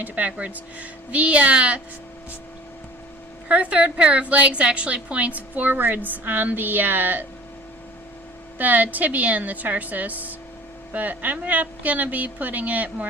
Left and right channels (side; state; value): both; normal; correlation 0.45